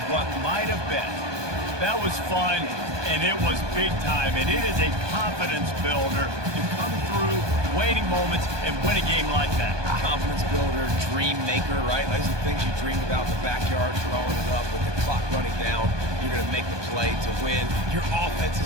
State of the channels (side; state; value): left; late; 1.2 ms